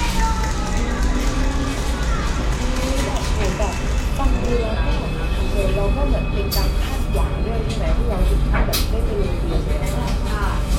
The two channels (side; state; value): both; identical; correlation 1.00